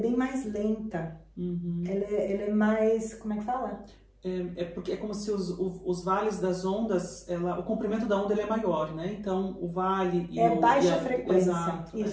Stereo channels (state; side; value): identical; both; correlation 1.00